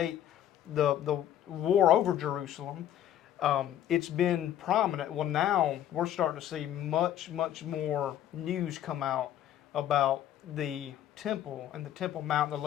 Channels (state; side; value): quieter; right; 11.3 dB